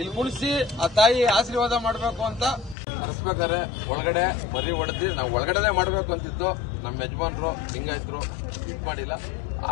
ಕುಣಿಸಿ ಆ ತಾಯಿ ಆಶೀರ್ವಾದ ಮಾಡಬೇಕು ಅಂತ ಕರೆಸ್ಬೇಕಾದ್ರೆ ಒಳಗಡೆ ಮರಿ ಹೊಡೆದಿ ನಾವು ಒಳಗಡೆನೆ ಮಾಡಬೇಕು ಅಂತಿತ್ತು. ನಮ್ಮ ಯಜಮಾನ್ರು ಲಿಂಗಾಯತರು ಇದ್ ಮಾಡಿಲ್ಲ,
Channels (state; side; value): drops out; right; at 2.8 s